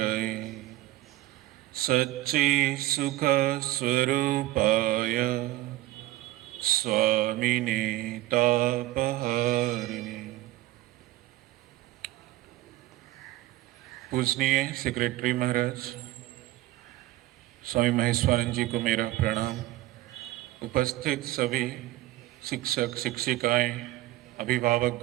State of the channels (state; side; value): quieter; left; 16.5 dB